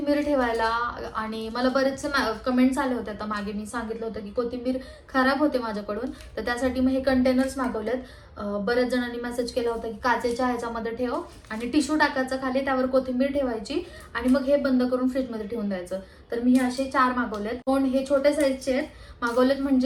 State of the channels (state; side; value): identical; both; correlation 1.00